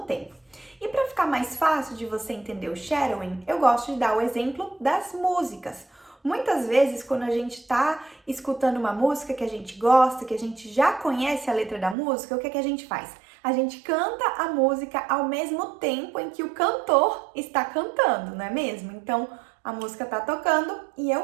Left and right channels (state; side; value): drops out; left; at 12.0 s